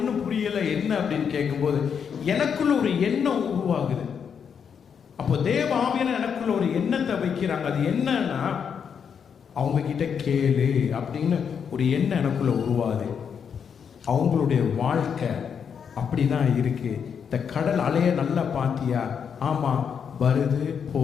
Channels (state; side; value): quieter; right; 7.1 dB